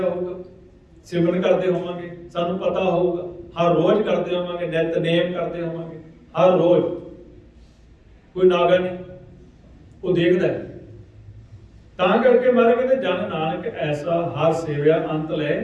ਹੋਊਗਾ, ਸਿਮਰਨ ਕਰਦੇ ਹੋਵਾਂਗੇ, ਸਾਨੂੰ ਪਤਾ ਹੋਊਗਾ, ਹਰ ਰੋਜ਼ ਕਰਦੇ ਹੋਵਾਂਗੇ, ਨਿਤਨੇਮ ਕਰਦੇ ਹੋਵਾਂਗੇ, ਹਰ ਰੋਜ਼, ਕੋਈ ਨਾਗਾ ਨਹੀਂ, ਉਹ ਦੇਖਦਾ ਹੈ। ਤਾਂ ਕਰਕੇ ਮਾਰੇ ਕਹਿੰਦੇ ਜਨ ਨਾਨਕ ਐਸਾ ਹਰ ਸੇਵਿਆ ਅੰਤ ਲੈ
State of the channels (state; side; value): identical; both; correlation 1.00